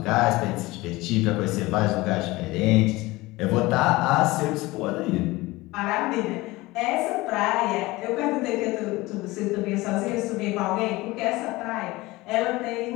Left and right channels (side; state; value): right; quieter; 20.6 dB